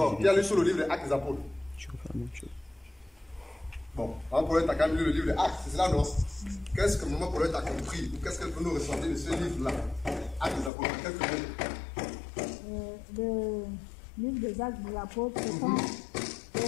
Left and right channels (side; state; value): right; drops out; at 10.7 s